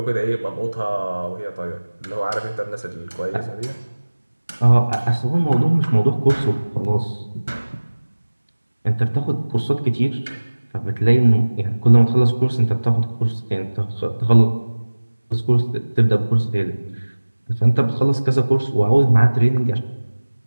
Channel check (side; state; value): both; inverted; correlation -1.00